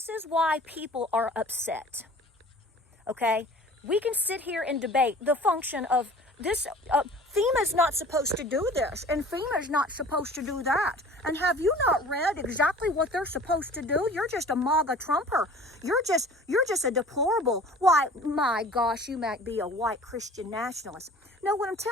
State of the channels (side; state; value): both; normal; correlation 0.46